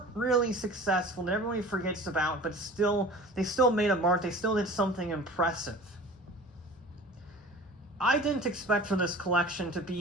really successful, that everybody forgets about, but they still made a mark, they still did something impressive. I didn't expect for this collection to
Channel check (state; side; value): normal; both; correlation 0.41